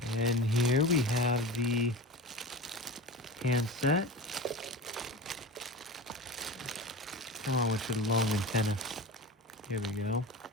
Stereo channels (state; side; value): normal; both; correlation 0.30